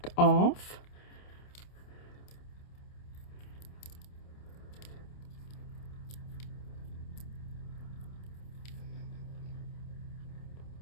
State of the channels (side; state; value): right; late; 28 ms